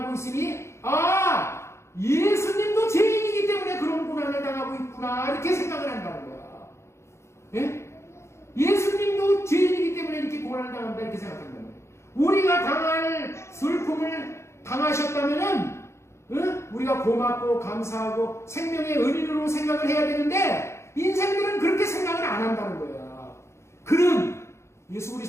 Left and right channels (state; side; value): late; right; 0.13 ms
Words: 있으니 예수님도 죄인이기 때문에 그런 고난을 당하고 있구나 이렇게 생각을 한다는 거야. 예? 예수님도 죄인이기 때문에 이렇게 고난을 당한다 이렇게 생각한다는 거야. 우리가 당할 슬픔을 당하셨다면은 우리가 고맙고 감사하고 생명의 은인으로 생각을 해야 되는데 인생들은 그렇게 생각을 안 한다는 거야. 그는 예수